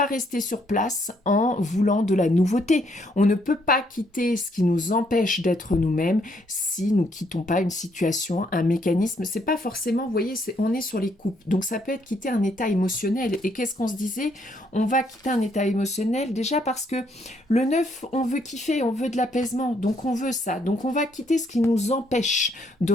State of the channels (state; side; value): normal; both; correlation 0.71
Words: rester sur place en voulant de la nouveauté. On ne peut pas quitter ce qui nous empêche d'être nous-mêmes si nous quittons pas une situation, un mécanisme. C'est pas forcément, vous voyez, on est sur les coupes. Donc ça peut être quitter un état émotionnel. Et qu'est-ce qu'on se disait? On va quitter un état émotionnel déjà parce que le 9, on veut kiffer, on veut de l'apaisement. Donc on veut ça. Donc on va quitter ce qui nous empêche de